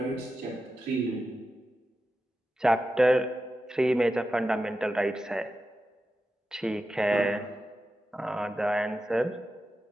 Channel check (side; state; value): both; normal; correlation 0.91